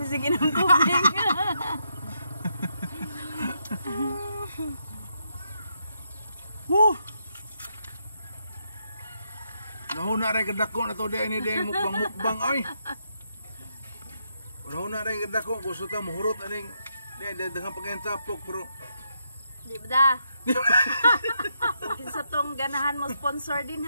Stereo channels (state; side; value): inverted; both; correlation -0.80